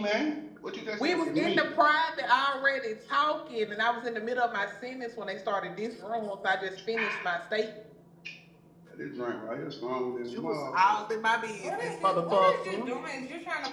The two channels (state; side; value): identical; both; correlation 1.00